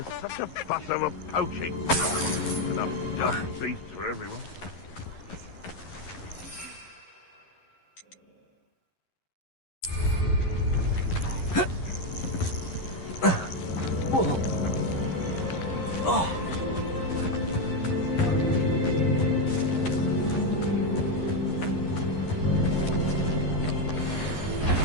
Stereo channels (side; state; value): right; late; 11 ms